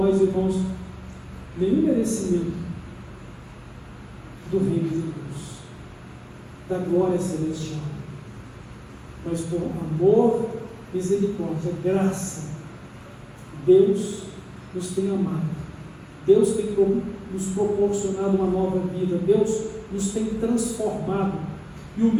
irmãos, nenhum merecimento do reino de Deus, da glória celestial, mas por amor, misericórdia, graça, Deus nos tem amado, Deus tem nos proporcionado uma nova vida, Deus nos tem transformado, e o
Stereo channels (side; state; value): both; identical; correlation 1.00